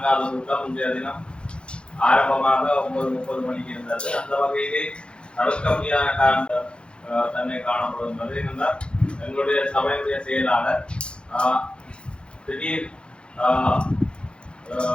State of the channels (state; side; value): late; right; 0.055 ms